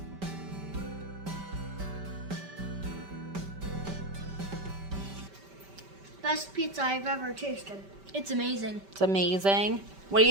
Best pizza I've ever tasted. It's amazing. It's amazing. What do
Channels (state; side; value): late; left; 5.1 ms